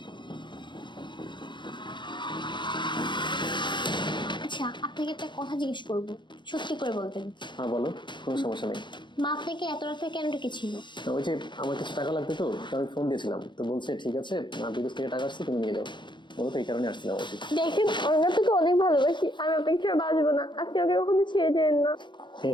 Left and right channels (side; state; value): right; late; 0.23 ms